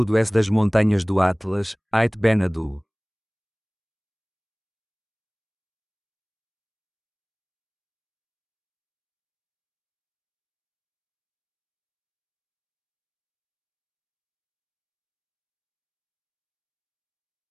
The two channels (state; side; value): identical; both; correlation 1.00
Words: S das montanhas do Atlas, Ait Ben Saddou.